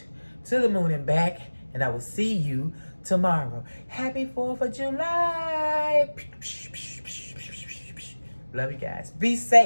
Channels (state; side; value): inverted; both; correlation -1.00